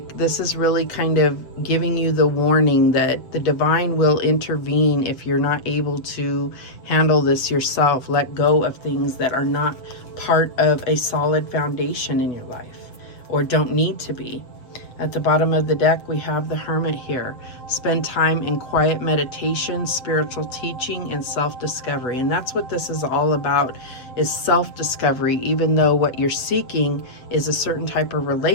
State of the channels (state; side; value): late; right; 7.8 ms